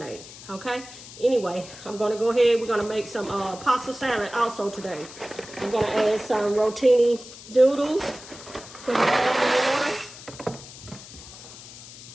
okay? Anyway, I'm gonna go ahead, we're gonna make some pasta salad also today. I'm gonna add some rotini noodles, put it all in water.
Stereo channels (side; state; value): left; noise; hiss, 16 dB below the sound